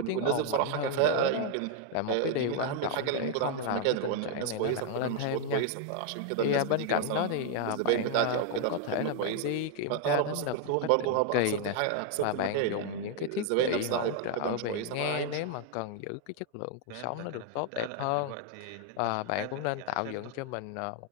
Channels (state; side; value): different; both; correlation 0.00